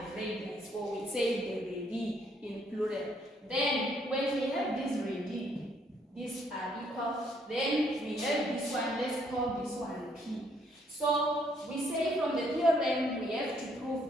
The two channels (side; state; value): both; normal; correlation 0.69